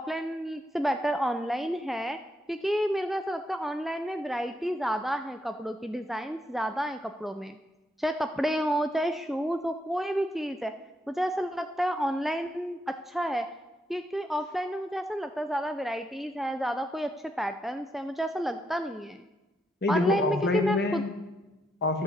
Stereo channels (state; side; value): normal; both; correlation 0.79